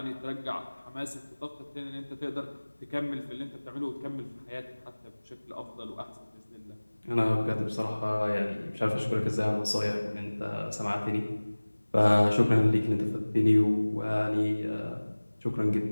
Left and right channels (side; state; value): both; inverted; correlation -1.00